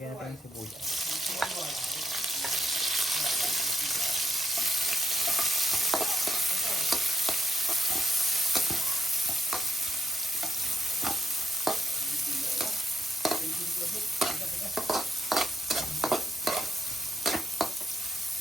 natin yung sibuyas.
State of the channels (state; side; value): normal; both; correlation 0.78